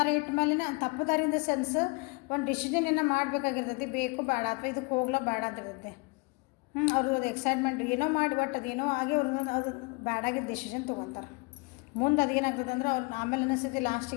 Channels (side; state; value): right; quieter; 28.8 dB